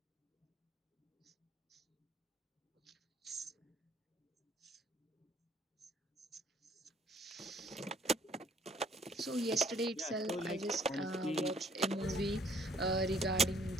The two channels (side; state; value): both; normal; correlation 0.62